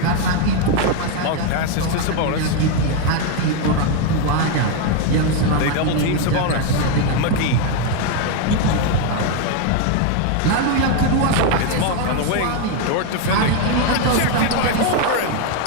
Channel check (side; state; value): both; different; correlation 0.01